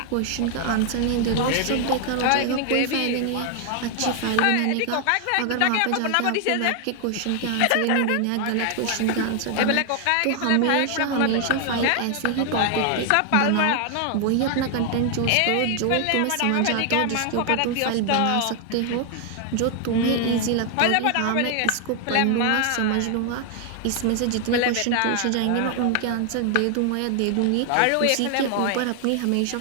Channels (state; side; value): different; both; correlation 0.00